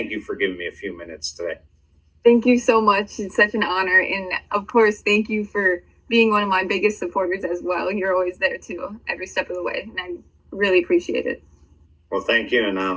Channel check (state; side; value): identical; both; correlation 1.00